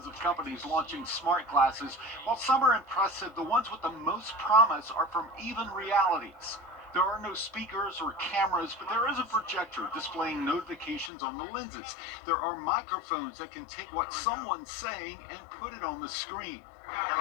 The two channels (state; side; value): drops out; right; at 11.1 s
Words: of companies launching smart glasses. While some are impressive, the ones with the most promise are from Even Realities. There are no speakers or cameras, but there is a projector displaying notifications on the lenses. There are microphones that can take what someone's saying and put it on the screen. Can